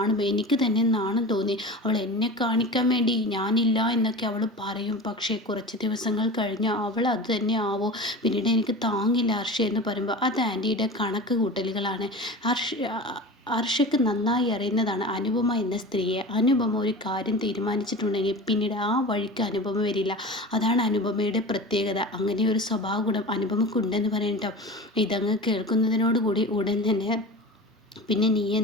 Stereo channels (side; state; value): both; normal; correlation 0.33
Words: എനിക്ക് തന്നെ നാണം തോന്നി. അവൾ എന്നെ കാണിക്കാൻ വേണ്ടി ഞാനില്ല എന്നൊക്കെ അവൾ പറയും. പക്ഷേ കുറച്ച് ദിവസങ്ങൾ കഴിഞ്ഞാൽ അവൾ അത് തന്നെ ആവോ? പിന്നീട് എനിക്ക് താങ്ങില്ല ഹർഷ എന്ന് പറയുമ്പോൾ അത് ആൻറ്റിയുടെ കണക്ക് കൂട്ടലുകളാണ്. ഹർഷയ്ക്ക് നന്നായി അറിയുന്നതാണ് അനുപമ എന്ന സ്ത്രീയെ. അനുപമ ഒരു കാര്യം തീരുമാനിച്ചിട്ടുണ്ടെങ്കിൽ പിന്നീട് ആ വഴിക്ക് അനുപമ വരില്ല. അതാണ് അനുപമയുടെ പ്രത്യേകത. അങ്ങനെ ഒരു സ്വഭാവ ഗുണം അനുപമക്കുണ്ടെന്ന് പറയട്ടോ. ഇതങ്ങ് കേൾക്കുന്നതിനോടുകൂടി ഉടൻ തന്നെ, പിന്നെ നീ